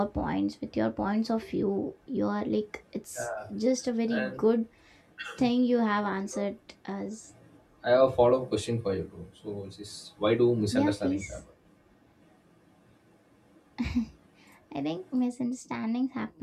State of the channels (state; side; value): identical; both; correlation 1.00